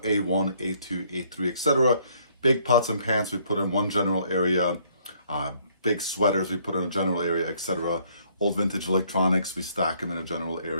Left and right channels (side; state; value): both; inverted; correlation -0.65